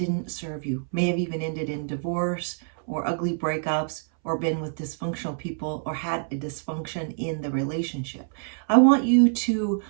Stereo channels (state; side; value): silent; left; 61 dB below the other